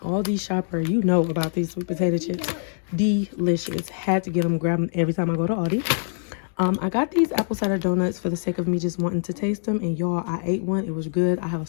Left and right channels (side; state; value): right; silent; digital silence